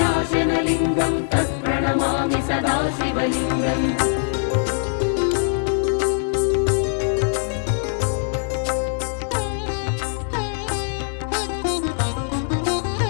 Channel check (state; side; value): silent; right; 64 dB below the other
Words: तत्प्रणमामि सदा शिवलिङ्गम्